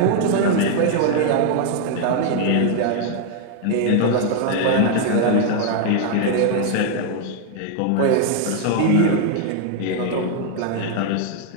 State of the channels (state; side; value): different; both; correlation 0.00